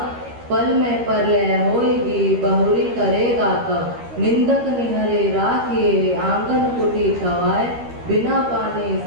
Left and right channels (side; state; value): left; late; 13 ms